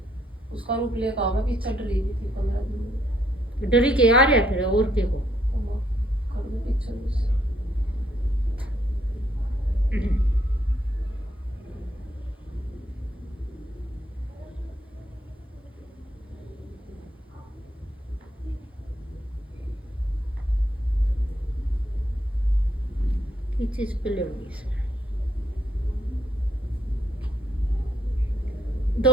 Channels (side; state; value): both; normal; correlation 0.72